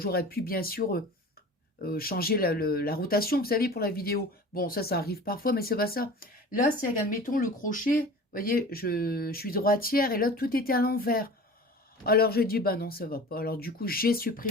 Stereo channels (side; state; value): both; normal; correlation 0.39